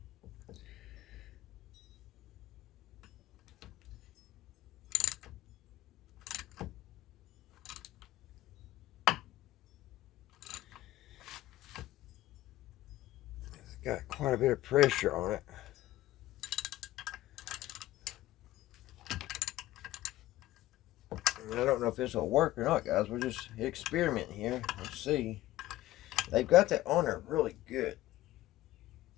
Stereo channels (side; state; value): right; quieter; 15.9 dB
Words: got quite a bit of pressure on it. And I don't know if this will work or not, guys. We're just experimenting here. Let's see. They've got that on there really good.